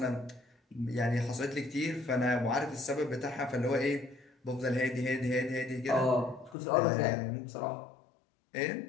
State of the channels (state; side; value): drops out; right; at 6.6 s